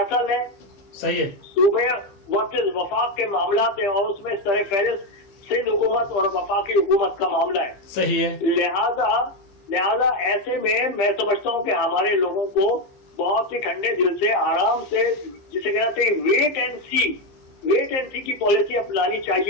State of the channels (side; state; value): right; late; 15 ms